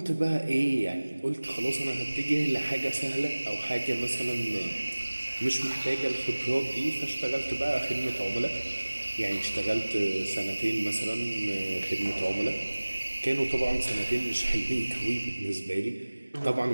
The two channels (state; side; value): inverted; both; correlation -1.00